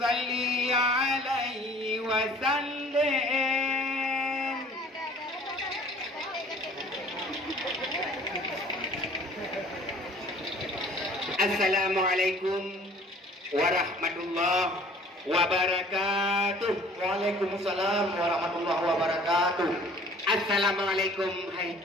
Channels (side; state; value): both; normal; correlation 0.51